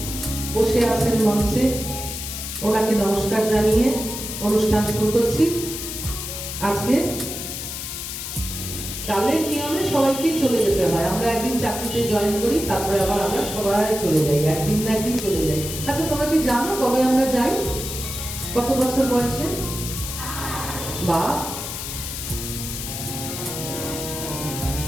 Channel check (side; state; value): left; noise; hiss, 6 dB below the sound